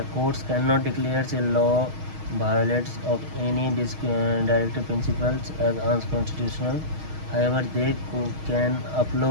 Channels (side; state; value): left; late; 6.4 ms